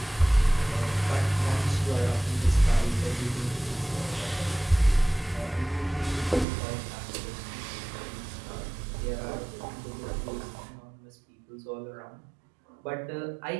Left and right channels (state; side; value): drops out; left; at 6.5 s